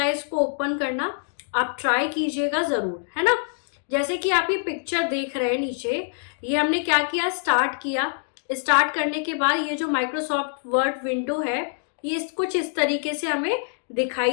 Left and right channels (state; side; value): silent; right; digital silence